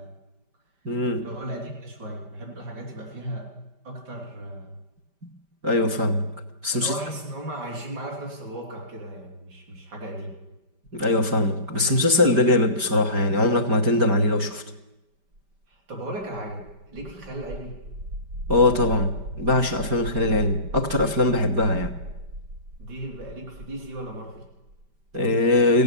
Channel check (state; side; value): late; left; 5.1 ms